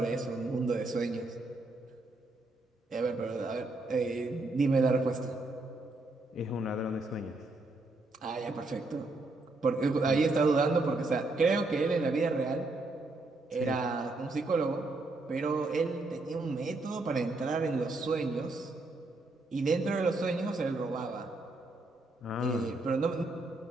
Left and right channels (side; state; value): left; quieter; 3.1 dB